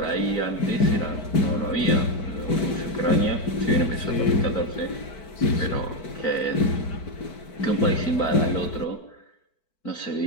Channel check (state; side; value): late; right; 4.6 ms